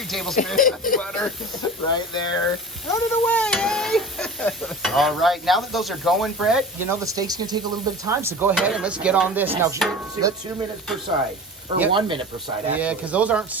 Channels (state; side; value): normal; both; correlation 0.35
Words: tablespoons of butter right there. Run it away, eh? All right. Now that those are going, Brett, you know, the steak's going to take a little bit of time, so go ahead and let's get on this. Now, Let's 2 minutes per side. Or 1 minute per side, actually. Yeah, because those aren't